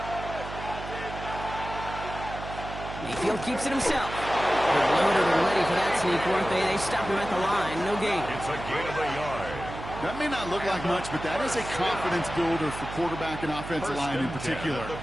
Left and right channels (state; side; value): noise; right; hum, 10 dB below the sound